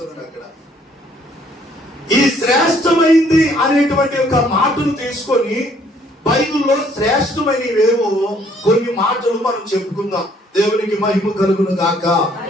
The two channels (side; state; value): both; normal; correlation 0.63